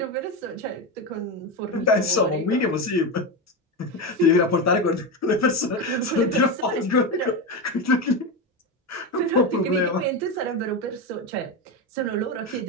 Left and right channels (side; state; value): both; normal; correlation 0.15